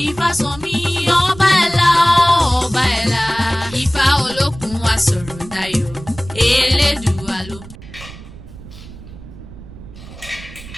Ifásànmí ọba ẹ̀la ọba ẹ̀la Ifá olókun asọ̀rọ̀dayọ̀ Elédùà ló.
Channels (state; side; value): noise; right; rumble, 16 dB below the sound